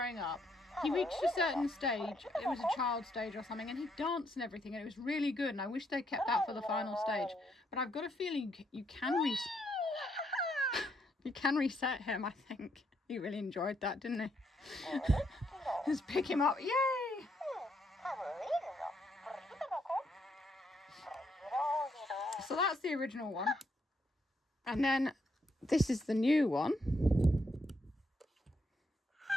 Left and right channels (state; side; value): normal; both; correlation 0.75